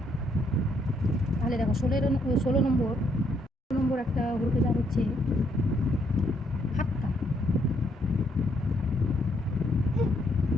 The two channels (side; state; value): both; normal; correlation 0.72